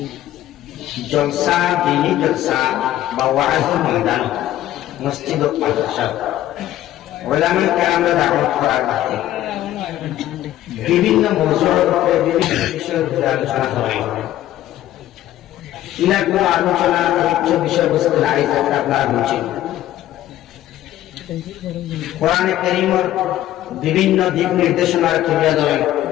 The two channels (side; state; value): right; quieter; 13.4 dB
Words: জলসা দিনী জলসা বা ওয়াজের ময়দান মসজিদ ও মাদ্রাসা ওলামায়ে কেরামরা দাওয়াত করার বাদে বিভিন্ন মওজুর উপরে বিভিন্ন বিষয়ের উপরে আলোচনা হয় ইনাগুলো আলোচনা উচ্চ বিষয়বস্তু নাই যেটা আপনারা বুঝছেন কোরআনে কারীমের বিভিন্ন দিক নির্দেশনা তুলে ধরেন